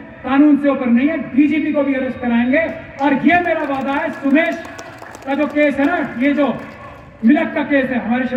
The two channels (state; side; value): identical; both; correlation 1.00